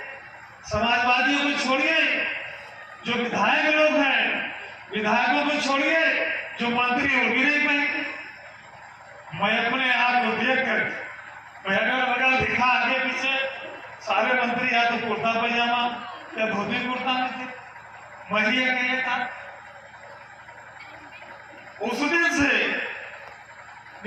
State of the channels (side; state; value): both; identical; correlation 1.00